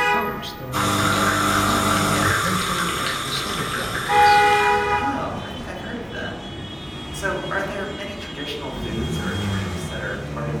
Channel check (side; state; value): both; identical; correlation 1.00